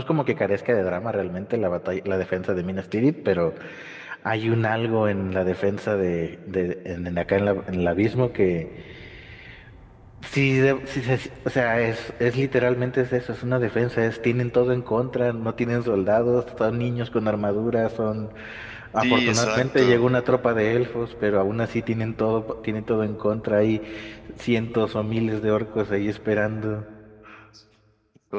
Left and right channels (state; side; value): identical; both; correlation 1.00